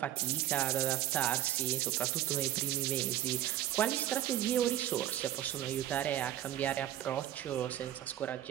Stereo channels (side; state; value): left; quieter; 12.4 dB